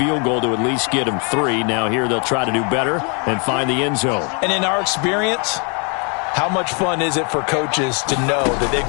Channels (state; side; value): quieter; right; 36.6 dB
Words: goal to at least get them 3. Now here they'll try to do better and find the end zone. And in our experience, how much fun is it for coaches to know that they've